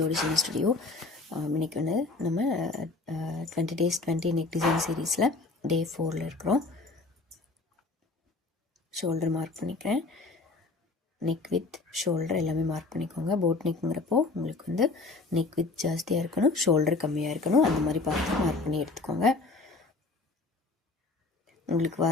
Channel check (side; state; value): right; quieter; 3.6 dB